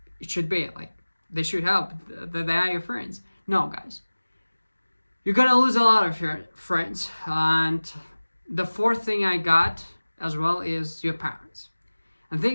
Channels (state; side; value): inverted; both; correlation -1.00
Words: it should be. Like, they should help, that they are your friends. No, guys, you're gonna lose a lot of your friends. And the fourth thing I got as well is your parents. And the